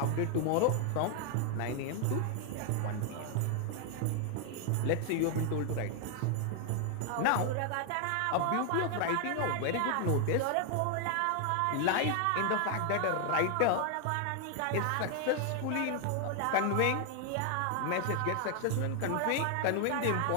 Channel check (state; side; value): different; both; correlation 0.00